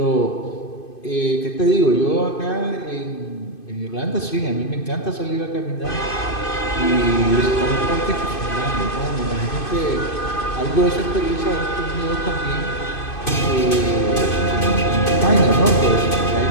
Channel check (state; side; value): late; right; 2.5 ms